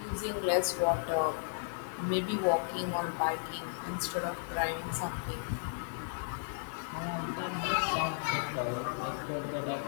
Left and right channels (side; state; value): right; silent; digital silence